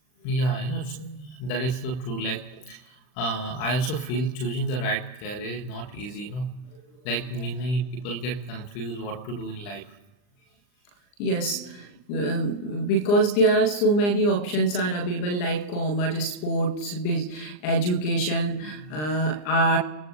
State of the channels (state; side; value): late; right; 39 ms